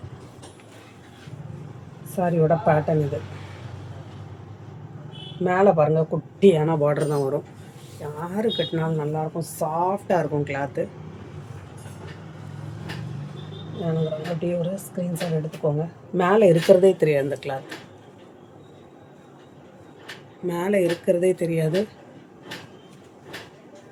சாரியோட பேட்டர்ன் இது. மேலே பாருங்கள் குட்டியான பார்டர் தான் வரும். யார் கட்டினாலும் நல்லாயிருக்கும், சாஃப்டாக இருக்கும் கிளாத்து. எனக்கு அப்படியே ஒரு ஸ்க்ரீன்ஷாட் எடுத்துக்கோங்க. மேலே இருக்கிறதே தெரியாது, அந்த கிளாத் மேலே இருக்கிறதே தெரியாது.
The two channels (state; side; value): identical; both; correlation 1.00